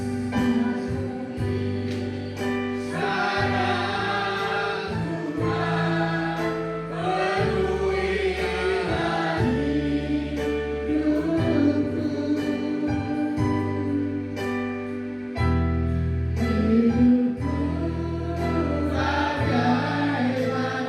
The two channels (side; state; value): both; identical; correlation 1.00